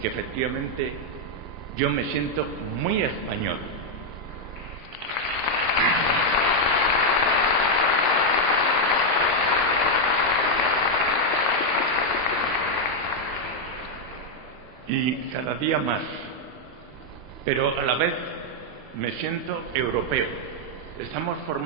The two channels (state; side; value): normal; both; correlation 0.00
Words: efectivamente yo me siento muy español. Y cada día más, pero a la vez me siento europeo. Estamos